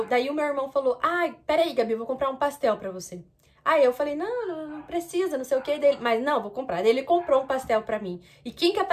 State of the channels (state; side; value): identical; both; correlation 1.00